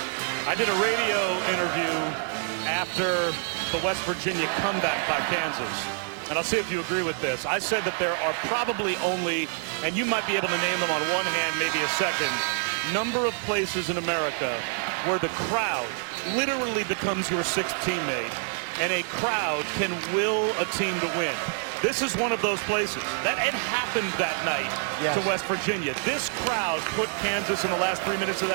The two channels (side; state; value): left; silent; 56 dB below the other